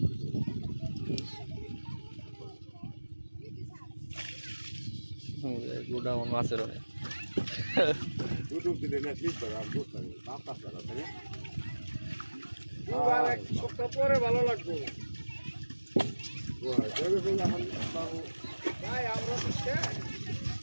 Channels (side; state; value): both; inverted; correlation -1.00